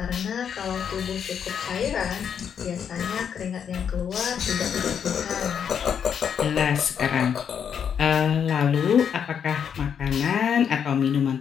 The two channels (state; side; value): quieter; right; 7.8 dB